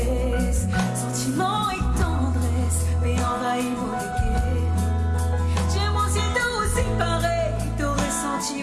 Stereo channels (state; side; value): identical; both; correlation 1.00